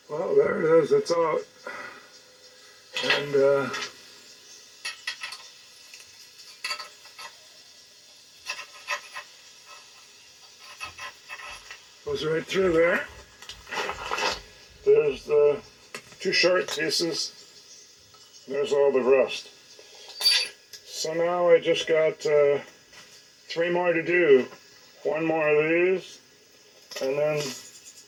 Well, there it is. It's out. And goes right through there. There's the two short pieces. There's all the rust. So now I just got 3 more to do. one more of these, and then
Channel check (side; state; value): both; identical; correlation 1.00